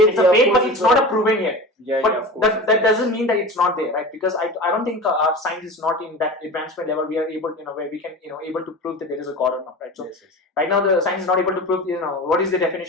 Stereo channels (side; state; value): both; normal; correlation 0.32